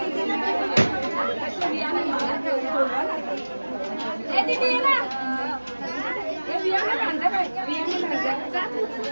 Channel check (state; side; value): inverted; both; correlation -1.00